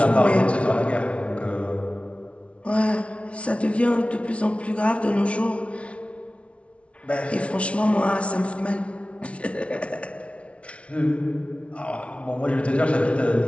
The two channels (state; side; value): late; right; 0.062 ms